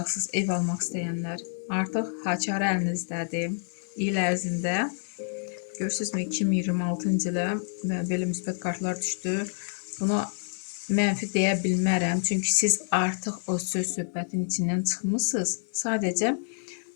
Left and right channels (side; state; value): right; silent; 59 dB below the other